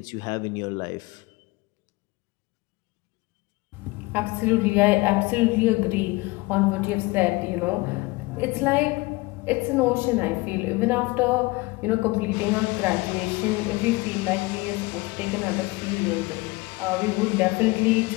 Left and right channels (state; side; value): quieter; right; 23.0 dB